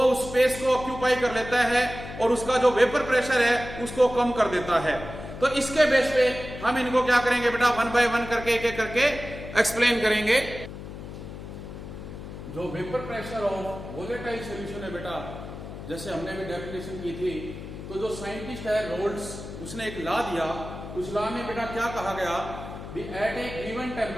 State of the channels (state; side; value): noise; left; hum, 11 dB below the sound